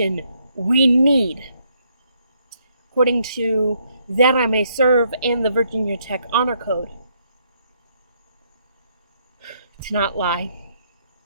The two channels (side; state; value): both; inverted; correlation -0.72